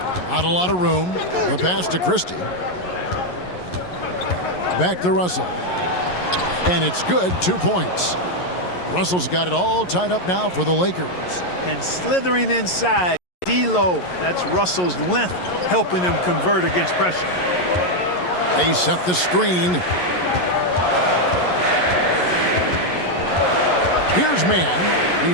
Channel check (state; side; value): late; right; 11 ms